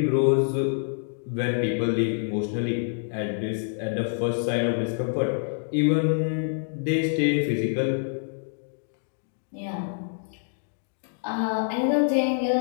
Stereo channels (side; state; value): right; silent; digital silence